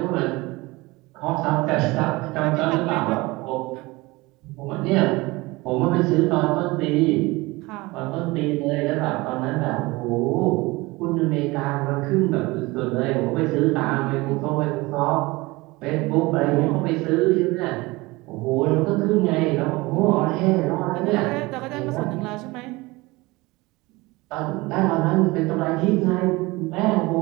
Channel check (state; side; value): quieter; left; 22.3 dB